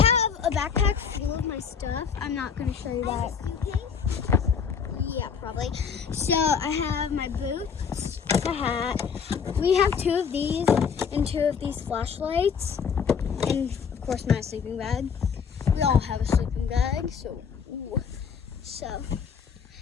a backpack full of my stuff. I'm not gonna show you that. Yeah, probably. So I have my boots, my hat. We have two of these and two of these flashlights, and of course my sleeping bag. We all have a sleeping bag, so. Ooh. So.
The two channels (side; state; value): right; quieter; 6.6 dB